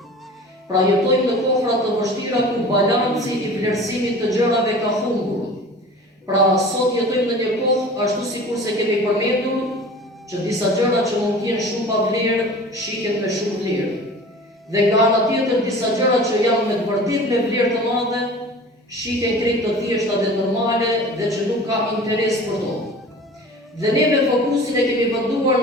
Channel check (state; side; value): normal; both; correlation 0.41